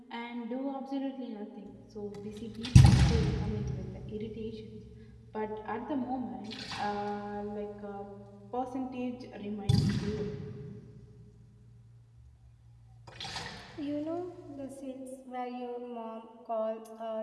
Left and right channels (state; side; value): identical; both; correlation 1.00